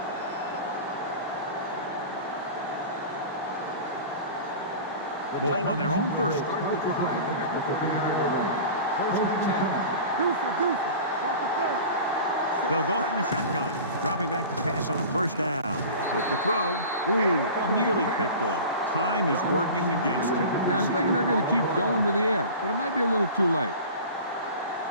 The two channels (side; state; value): both; inverted; correlation -0.37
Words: Ball on their own 30. Start the drive at the 30-yard line. First and 10. Deuces. Watch the play. They'll go from the shotgun. Dropping back to pass on first down. With the throw. Ooh, nearly picked off. Time is working against him. Yeah, I'm thinking they're going to keep going to the air, but it might be a little too late.